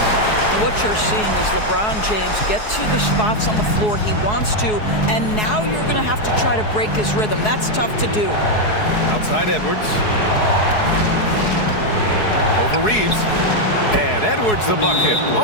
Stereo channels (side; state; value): right; late; 4.7 ms